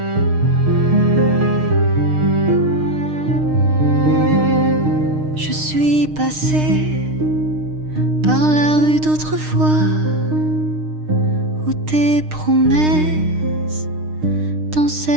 par la rue d'autrefois où tes promesses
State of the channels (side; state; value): left; late; 6.5 ms